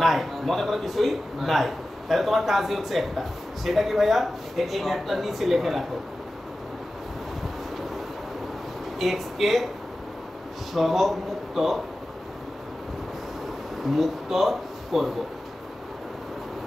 নাই, মনে করো কিছুই নাই। তাহলে তোমার কাজই হচ্ছে একটা, সেটা কি ভাইয়া, এই ম্যাথটা নিচে লিখে রাখো, x কে সহগ মুক্ত করব,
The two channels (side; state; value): both; normal; correlation 0.95